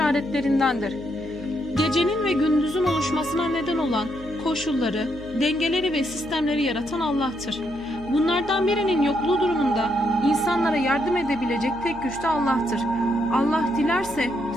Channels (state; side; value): noise; left; hum, 18 dB below the sound